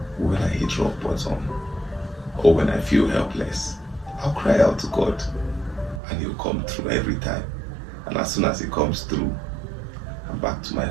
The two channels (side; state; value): left; drops out; at 6.0 s